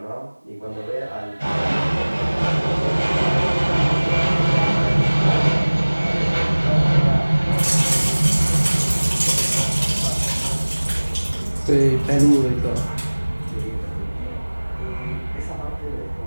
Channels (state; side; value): inverted; both; correlation -1.00